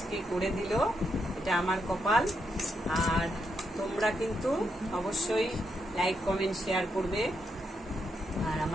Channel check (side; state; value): both; normal; correlation 0.81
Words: করে দিল, এটা আমার কপাল। আর তোমরা কিন্তু অবশ্যই লাইক, কমেন্ট, শেয়ার করবে আর